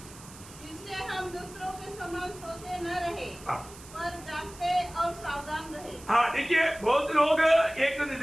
इसलिए हम दूसरों के समान सोते न रहे हाँ. पर जागते और सावधान रहे. हाँ देखिए बहुत लोग एक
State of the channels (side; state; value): right; noise; hiss, 18 dB below the sound